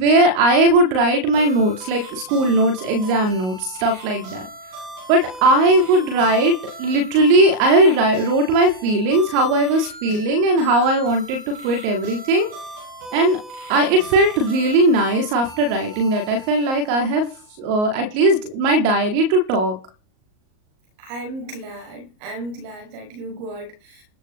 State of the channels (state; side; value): late; left; 38 ms